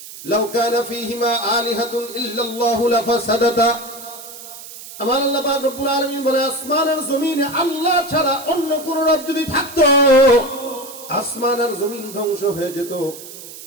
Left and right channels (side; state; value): right; noise; hiss, 14 dB below the sound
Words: লাউ কানা ফীহিমা আলিহাতুন ইল্লাল্লাহু লাফাসাদাতা, আমার আল্লাহ পাক রব্বুল আলামিন বলে আসমান আর জমিনে আল্লাহ ছাড়া অন্য কোন রব যদি থাকতো আসমান আর জমিন ধ্বংস হয়ে যেত,